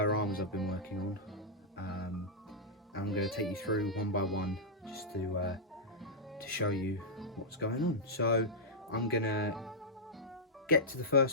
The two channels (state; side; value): normal; both; correlation -0.10